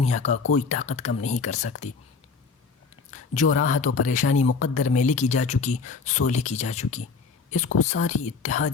کا کوئی طاقت کم نہیں کر سکتی۔ جو راحت و پریشانی مقدر میں لکھی جا چکی سو لکھی جا چکی، اس کو ساری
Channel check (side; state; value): right; quieter; 4.9 dB